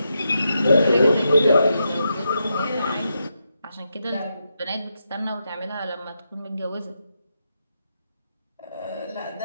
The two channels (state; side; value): inverted; both; correlation -0.84